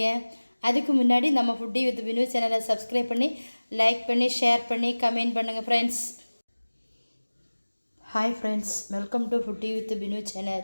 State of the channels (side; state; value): both; inverted; correlation -1.00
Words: அதுக்கு முன்னாடி நம்ம ஃபுட்டி வித் பினு சேனலை சப்ஸ்கிரைப் பண்ணி லைக் பண்ணி ஷேர் பண்ணி கமெண்ட் பண்ணுங்கள் friends. Hi friends, welcome to foodie with Binu